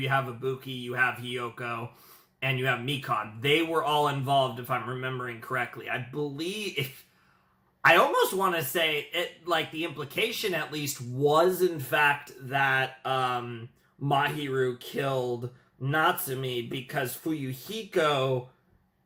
you have Ibuki, you have Hiyoko, and you have Mikon. They were all involved, if I'm remembering correctly. I believe... I almost want to say it, like, the implication at least was in fact that Mahiru killed Natsumi because Fuyuhiko,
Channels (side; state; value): both; identical; correlation 1.00